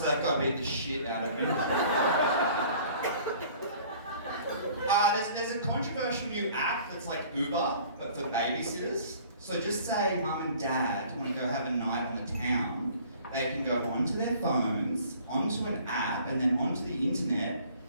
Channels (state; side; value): inverted; both; correlation -0.52